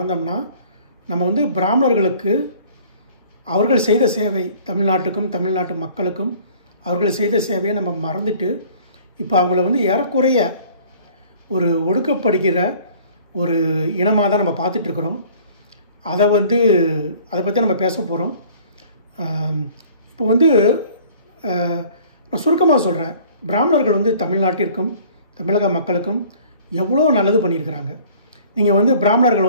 நம்ம பிராமணர்களுக்கு அவர்கள் செய்த சேவை, தமிழ்நாட்டுக்கும் தமிழ்நாட்டு மக்களுக்கும் அவர்கள் செய்த சேவையை நம்ம மறந்துட்டு இப்போ அவங்கள ஏறக்குறைய ஒரு ஒடுக்கப்படுகிற ஒரு இனமாக தான் நம்ம பார்த்துட்ருக்குறோம். அதை பற்றி நம்ம பேச போகிறோம். இப்போ நான் சுருக்கமாக சொல்கிறேன். பிராமணர்கள் தமிழ்நாட்டிற்கும் தமிழக மக்களுக்கும் எவ்வளோ நல்லது பண்ணியிருக்கிறாங்க. நீங்கள்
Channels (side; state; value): both; inverted; correlation -0.51